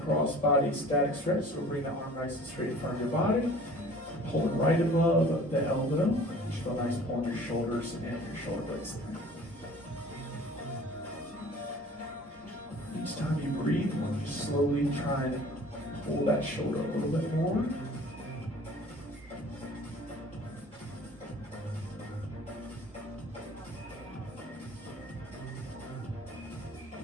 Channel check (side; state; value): both; normal; correlation 0.48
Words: body static stretch. So we'll bring the arm nice and straight in front of your body. Pull it right above the elbow. Just feel nice pull on your shoulders and your shoulder blades there. Each time you breathe, you just slowly try and pull that shoulder a little bit more.